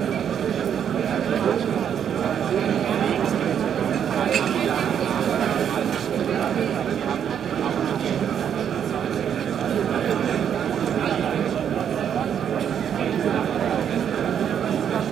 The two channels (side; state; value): left; quieter; 8.7 dB